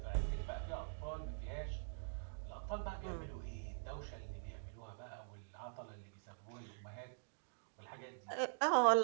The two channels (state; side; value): silent; left; digital silence